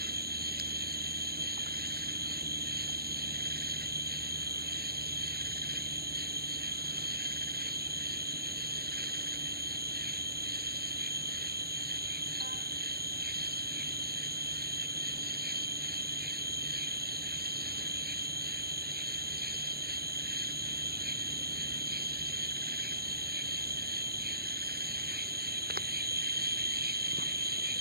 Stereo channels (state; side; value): late; left; 0.45 ms